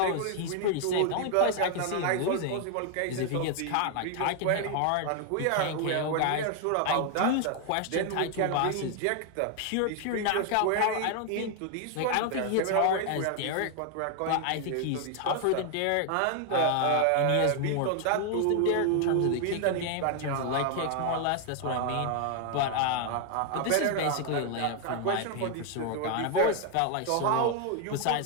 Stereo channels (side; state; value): both; different; correlation 0.00